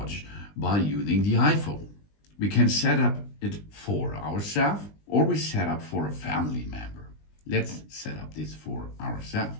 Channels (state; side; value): late; right; 20 ms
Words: by using the iPhone. We can set up it for ourselves, or we set up for a family member. Let's set up this for ourselves.